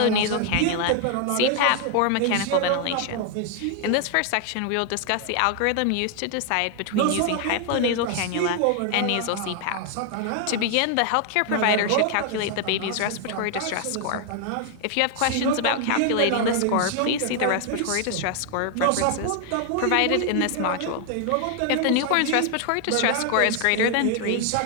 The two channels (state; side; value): different; both; correlation 0.00